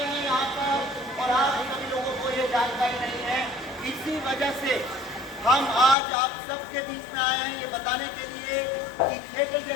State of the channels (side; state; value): right; drops out; at 6.0 s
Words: हैं यहाँ पर और आप सभी लोगों को ये जानकारी नहीं है। इसी वजह से हम आज आप सबके बीच में आए हैं ये बताने के लिए कि थिएटर